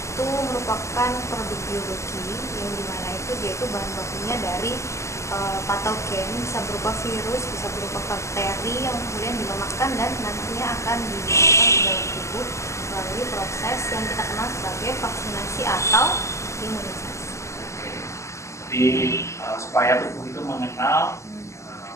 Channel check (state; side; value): late; right; 0.14 ms